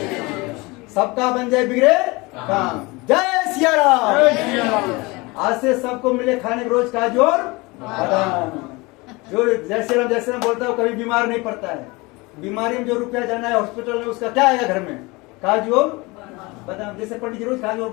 सबका बन जाए बिगड़े काम। जय सिया राम। आज से सबको मिले खाने के रोज काजू और बादाम। जो जय श्री राम बोलता है वो कभी बीमार नहीं पड़ता है। बीमारी में जो रुपया जाना है हॉस्पिटल में उसका क्या आएगा घर में? काजू और बादाम। जैसे पंडित जी रोज काजू और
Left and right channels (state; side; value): quieter; right; 24.5 dB